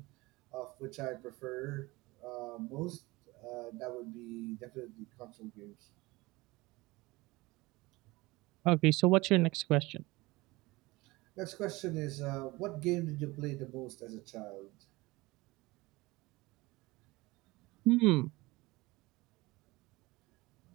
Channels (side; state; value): left; quieter; 21.7 dB